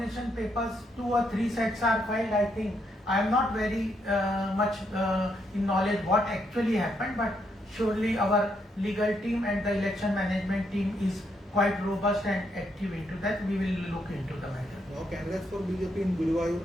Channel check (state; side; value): normal; both; correlation 0.77